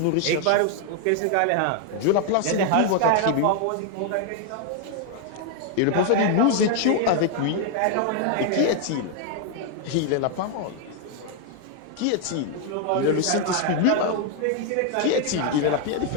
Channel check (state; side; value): different; both; correlation 0.00